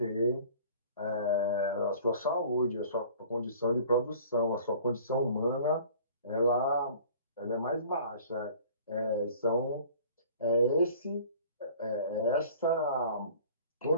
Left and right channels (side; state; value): both; inverted; correlation -0.48